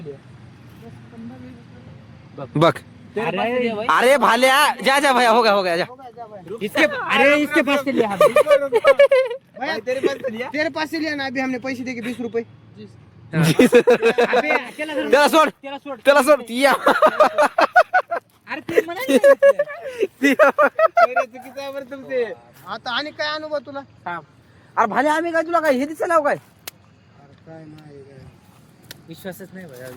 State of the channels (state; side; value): identical; both; correlation 1.00